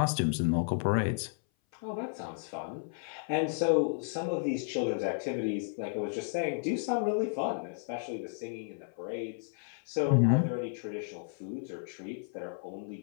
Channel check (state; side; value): silent; right; 56 dB below the other